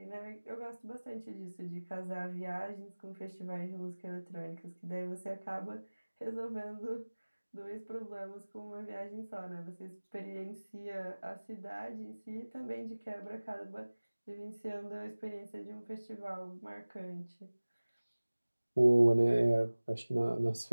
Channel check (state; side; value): inverted; both; correlation -1.00